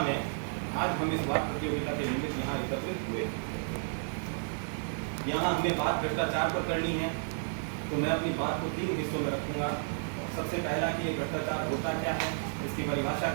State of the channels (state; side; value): silent; left; 56 dB below the other